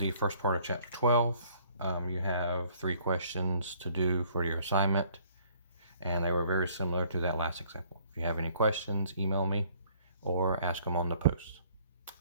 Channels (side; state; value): both; inverted; correlation -0.59